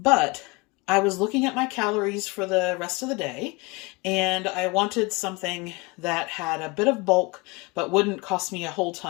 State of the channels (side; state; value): right; quieter; 25.6 dB